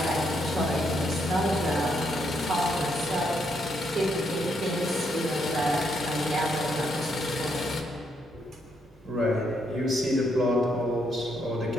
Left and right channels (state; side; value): normal; both; correlation 0.76